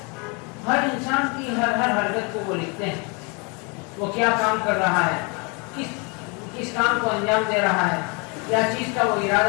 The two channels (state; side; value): quieter; right; 31.8 dB